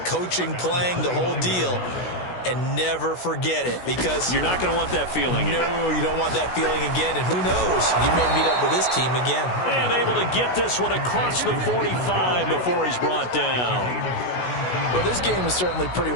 Coaching, playing, the whole deal. And never forget it, because you're not going to want that feeling again. No, you don't want that feeling again. And who knows? You may meet up with this team again. And able to get this one across the 45 before he's brought down. Well, this game is certainly pretty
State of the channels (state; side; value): late; right; 16 ms